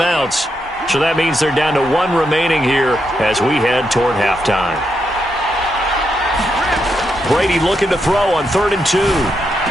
So that means they're down to 1 remaining here as we head toward halftime. Brady looking to throw on 3rd and 2.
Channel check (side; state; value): both; normal; correlation 0.82